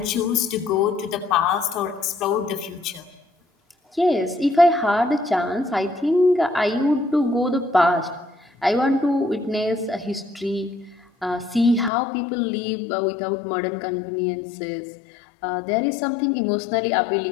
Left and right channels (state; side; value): drops out; right; at 11.9 s